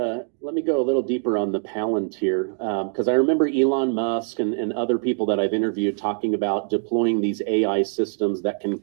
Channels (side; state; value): left; silent; digital silence